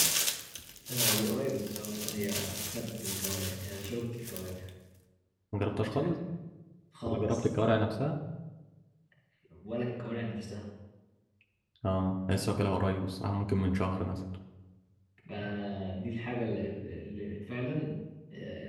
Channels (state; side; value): identical; both; correlation 1.00